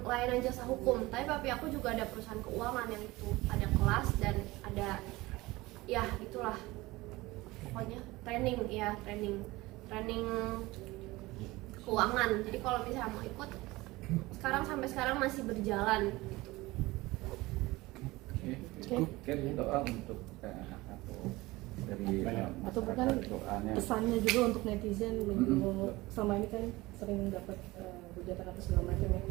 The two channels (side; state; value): left; quieter; 20.4 dB